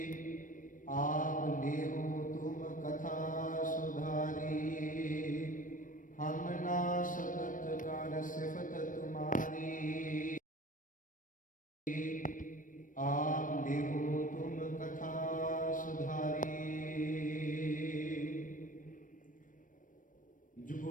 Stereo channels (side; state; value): right; late; 0.38 ms